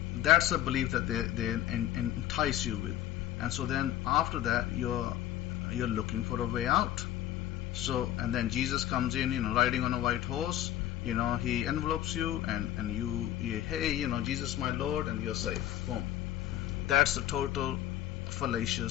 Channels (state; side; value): quieter; right; 13.0 dB